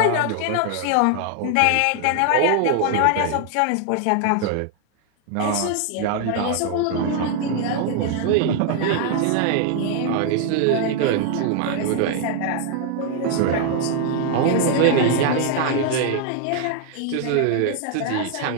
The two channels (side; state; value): both; different; correlation 0.00